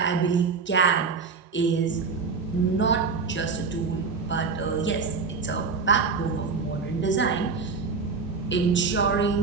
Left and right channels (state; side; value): quieter; left; 4.9 dB